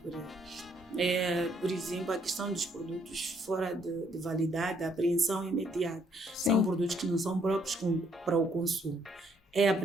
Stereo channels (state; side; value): normal; both; correlation 0.69